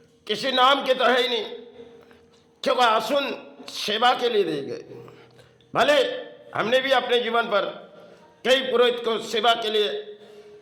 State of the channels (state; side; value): identical; both; correlation 1.00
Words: नाम के तो है ही नहीं, क्योंकि आसन सेवा के लिए दिए गए। भले हमने भी अपने जीवन पर कई पुरोहित को सेवा के लिए